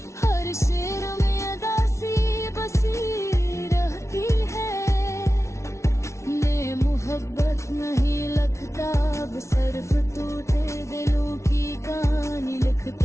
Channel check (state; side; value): late; right; 0.13 ms